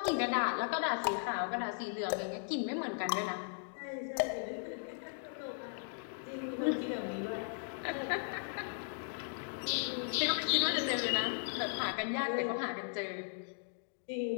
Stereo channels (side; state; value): right; silent; digital silence